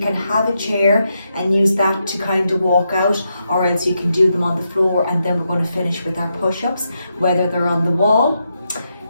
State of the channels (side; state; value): both; inverted; correlation -0.83